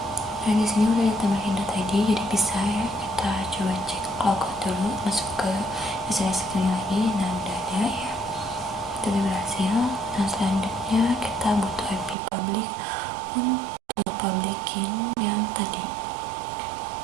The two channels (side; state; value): left; drops out; at 12.2 s